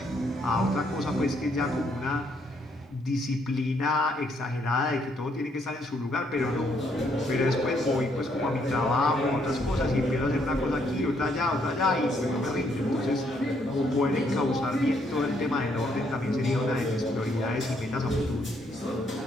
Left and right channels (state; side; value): normal; both; correlation 0.71